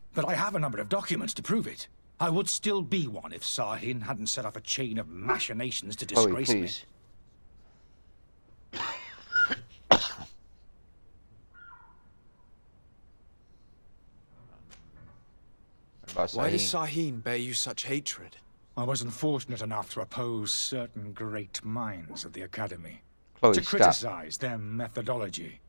But I have a number of documents to prove it. I would still be one if Sahin hadn't set off a chain of machinations to disgrace me. Why does Sahin bear you such hatred? I wasn't fortunate enough to oppose certain great minds at the Academy. Chloe, to stop. criticize their methodology.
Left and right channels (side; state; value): both; inverted; correlation -1.00